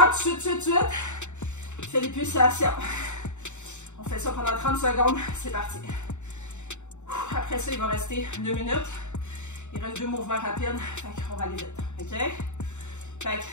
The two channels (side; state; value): right; late; 0.84 ms